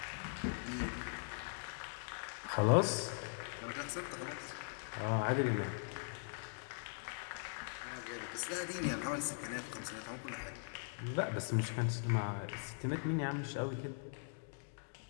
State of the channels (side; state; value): right; silent; digital silence